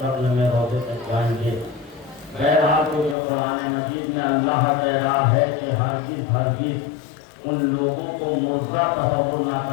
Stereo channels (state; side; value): drops out; right; at 3.2 s